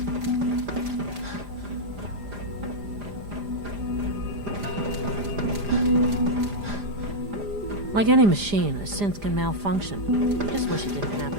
Like any machine, a synth can malfunction. I just wish it didn't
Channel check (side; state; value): left; late; 5.0 ms